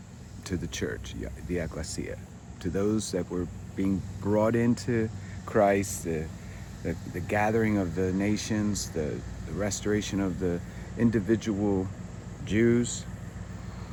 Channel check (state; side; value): identical; both; correlation 1.00